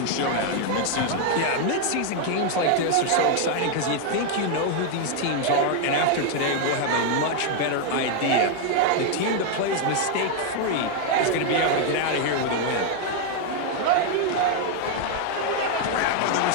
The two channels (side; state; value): both; different; correlation 0.00